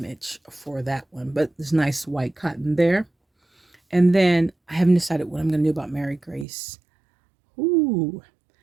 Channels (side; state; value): left; drops out; at 6.5 s